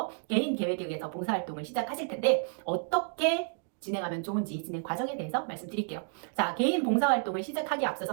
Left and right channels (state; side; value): silent; left; 55 dB below the other